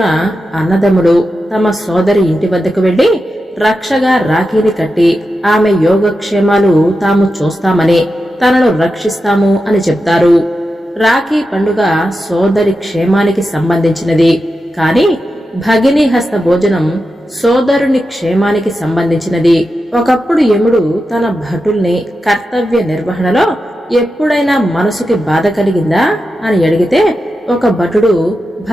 అన్నదమ్ములు తమ సోదరి ఇంటి వద్దకు వెళ్లి రక్షగా రాఖీని కట్టి ఆమె యోగక్షేమాలు తాము చూస్తామని, తనను రక్షిస్తాము అని చెప్తారు. రాఖీ పండుగ సోదరి క్షేమానికి సంబంధించినది. కాని భగిని హస్త భోజనం సోదరుని క్షేమానికి సంబంధించినది. ఒకప్పుడు యముడు తన భటుల్ని కర్తవ్య నిర్వహణలో ఎప్పుడైనా మనసుకి బాధ కలిగిందా అని అడిగితే, ఒక భటుడు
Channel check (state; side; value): normal; both; correlation 0.90